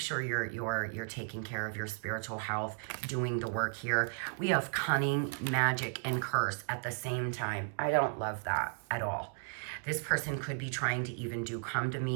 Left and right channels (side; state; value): left; silent; 55 dB below the other